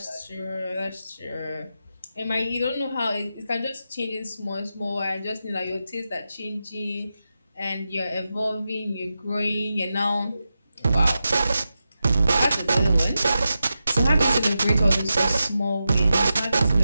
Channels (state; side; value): inverted; both; correlation -0.90